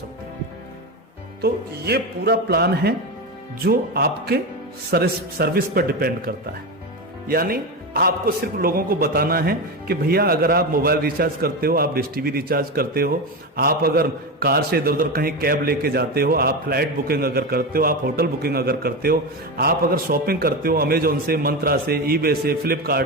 हैं। तो ये पूरा प्लान है जो आपके सर्विस पर डिपेंड करता है। यानी आपको सिर्फ लोगों को बताना है कि भैया अगर आप मोबाइल रिचार्ज करते हो, आप डिश टीवी रिचार्ज करते हो, आप अगर कार से इधर उधर कहीं कैब लेके जाते हो, आप फ्लाइट बुकिंग अगर करते हो, आप होटल बुकिंग अगर करते हो, आप अगर शॉपिंग करते हो अमेजोन से, मंत्रा से, ईबे से, फ्लिपकार्ट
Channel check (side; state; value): both; normal; correlation 0.18